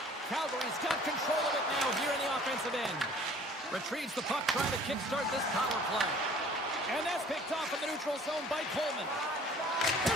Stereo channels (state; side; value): normal; both; correlation 0.51